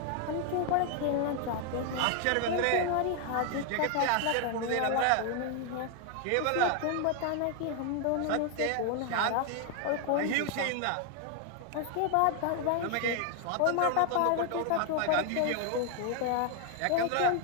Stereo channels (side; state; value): both; different; correlation 0.00